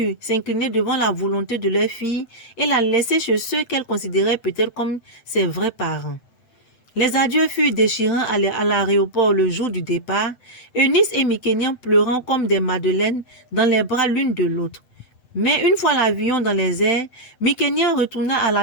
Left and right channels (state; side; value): late; right; 7.9 ms